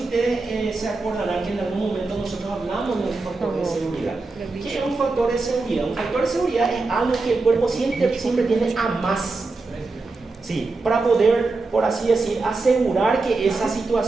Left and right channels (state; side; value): quieter; left; 3.7 dB